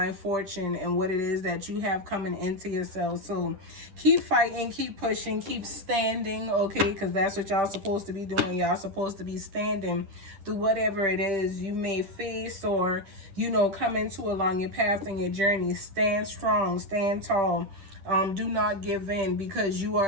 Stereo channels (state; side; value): late; left; 10 ms